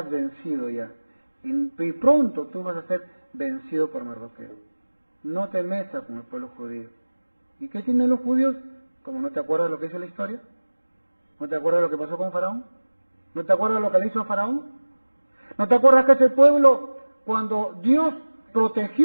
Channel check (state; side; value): inverted; both; correlation -1.00